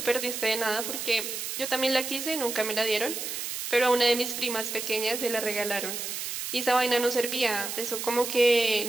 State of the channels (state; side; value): noise; right; hiss, 5 dB below the sound